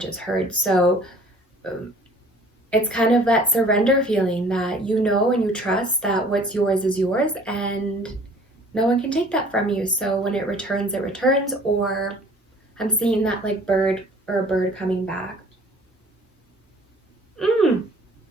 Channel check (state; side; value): normal; both; correlation 0.52